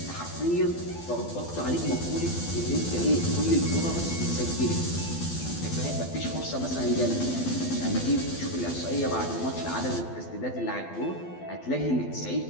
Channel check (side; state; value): right; late; 12 ms